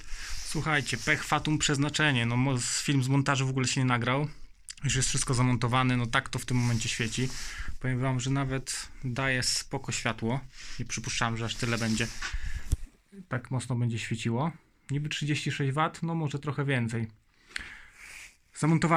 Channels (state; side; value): identical; both; correlation 1.00